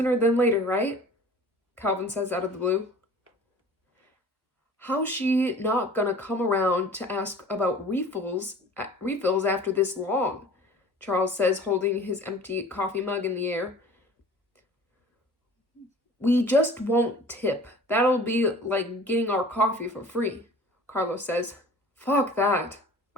than later, right? Calvin says out of the blue. How's she not gonna come around to ask about refills after this long? Charles says, holding his empty coffee mug in the air. We just won't tip. That'll be like getting our coffee for free, Carlos says. Fuck that,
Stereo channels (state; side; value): normal; both; correlation 0.45